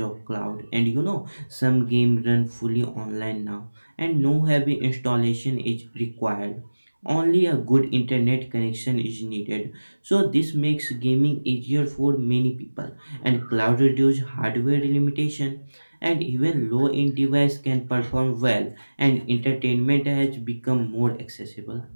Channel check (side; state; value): both; inverted; correlation -1.00